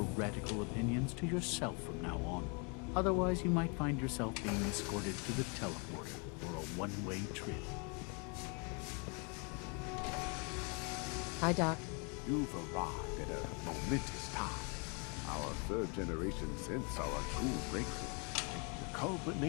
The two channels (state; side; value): quieter; right; 34.6 dB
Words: radical opinions to yourself from now on. Otherwise, you might find yourself being escorted to the teleporter for a one-way trip. Hi, Doc. You've arrived at a momentous time. Our third-generation synths are a true breakthrough. The